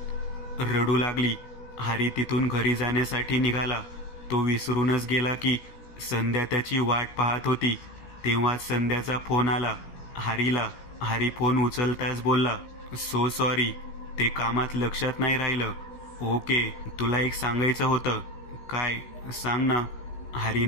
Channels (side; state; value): right; late; 16 ms